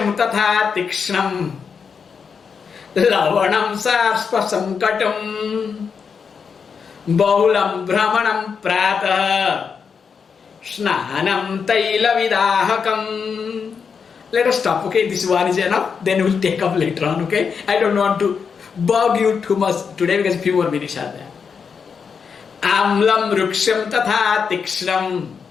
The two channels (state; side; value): quieter; right; 6.1 dB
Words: Tatha Tikshnam Lavanam Sarspasam Katam Bahulam Brahmanam Prata Snanam Taila Vidahakam. Let us stop, okay? This one is enough. Then we'll take up later on, okay? I don't want to bug you too much today because few more minutes are there. Amlam Ruksham Tatha Tikshnam